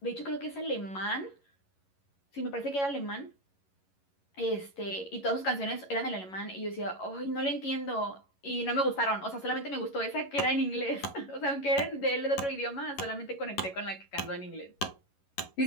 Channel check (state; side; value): late; right; 11 ms